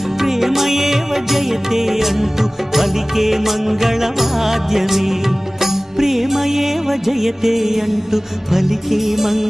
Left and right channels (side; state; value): both; normal; correlation 0.98